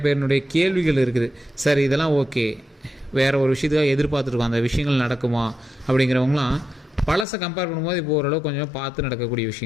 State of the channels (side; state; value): right; drops out; at 7.2 s